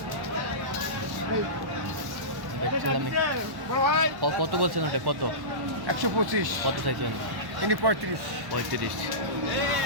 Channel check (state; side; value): late; left; 1.1 ms